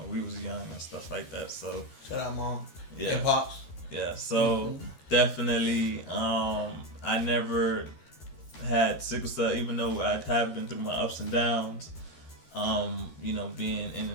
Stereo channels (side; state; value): right; late; 13 ms